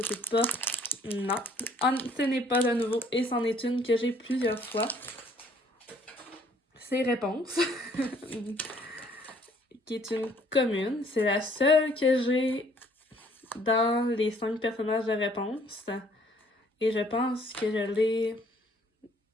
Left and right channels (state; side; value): normal; both; correlation 0.60